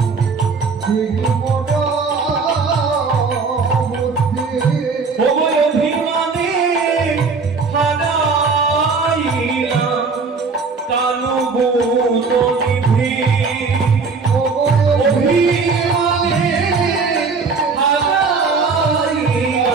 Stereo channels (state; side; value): quieter; left; 4.7 dB